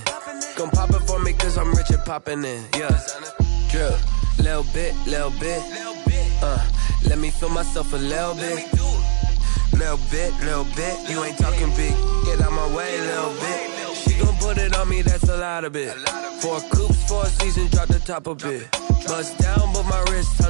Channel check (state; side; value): silent; left; digital silence